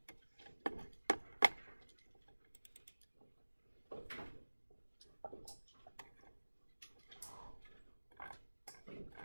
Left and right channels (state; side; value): inverted; both; correlation -1.00